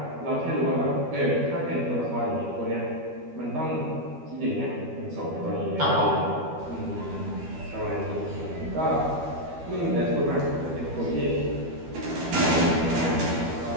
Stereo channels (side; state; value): left; late; 12 ms